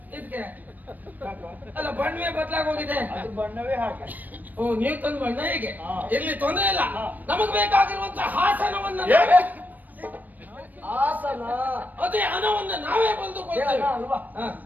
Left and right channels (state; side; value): late; left; 0.084 ms